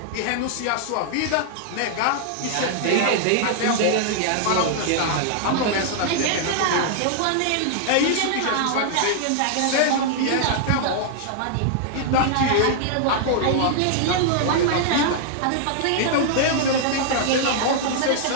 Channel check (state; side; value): different; both; correlation -0.01